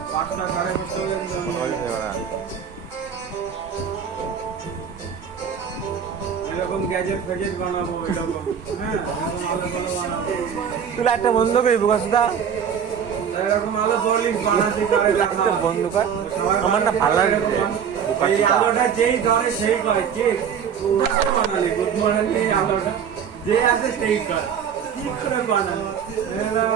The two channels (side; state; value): left; quieter; 7.7 dB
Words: 5টা 5:30 পর্যন্ত। এরকম গ্যাজেট ফ্যাজেট বানাবো, এরকম হ্যাঁ তুই লাইটটা বন্ধ করবি বসদা, এরকম আলো বলি বানাতে লাইটটা বন্ধ কর, আমার না ভালো লাগে। এই আলোটা যেই ধরে সেই করে, ঠিক কোথায় বানালি বুদ্ধি বানালি, এই আলোটা যে আছে সেই কর, কি করে বানালি